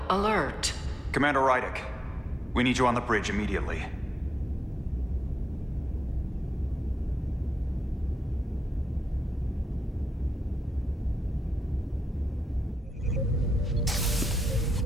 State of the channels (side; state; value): both; normal; correlation 0.87